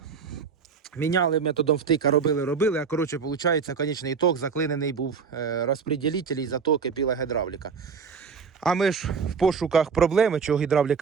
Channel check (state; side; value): quieter; left; 5.9 dB